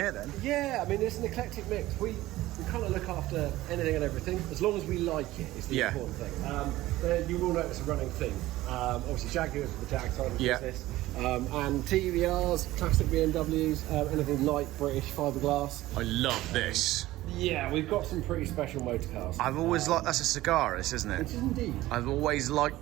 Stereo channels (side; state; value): left; quieter; 16.7 dB